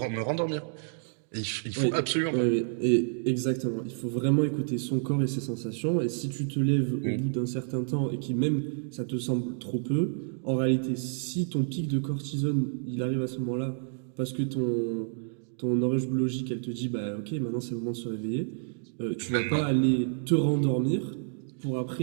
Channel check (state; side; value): silent; left; digital silence